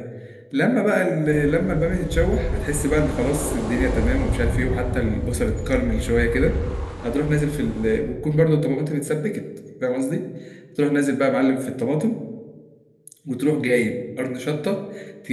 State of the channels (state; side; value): identical; both; correlation 1.00